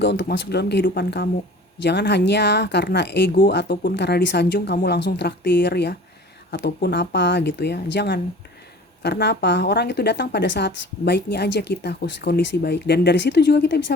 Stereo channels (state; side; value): normal; both; correlation 0.44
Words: untuk masuk dalam kehidupan kamu. Jangan hanya karena ego ataupun karena disanjung kamu langsung traktir ya, ataupun apa gitu ya, jangan. Karena apa? Orang itu datang pada saat baiknya aja kita, kondisi baik. Dan dari situ juga kita